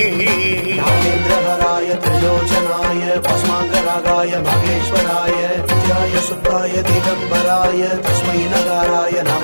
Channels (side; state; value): both; inverted; correlation -1.00